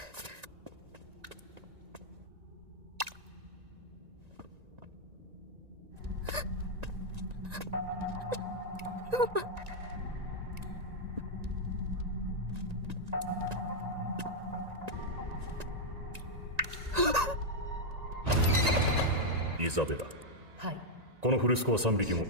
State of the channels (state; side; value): late; left; 1.9 ms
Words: イザベラ。はい。このフルスコア3匹も